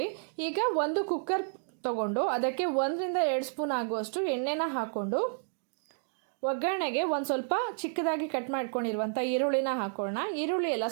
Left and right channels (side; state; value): left; silent; digital silence